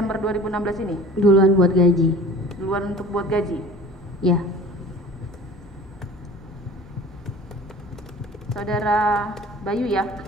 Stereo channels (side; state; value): both; normal; correlation 0.43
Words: 2016 ini? Duluan buat gaji. Duluan untuk buat gaji? Ya. Saudara Bayu ya,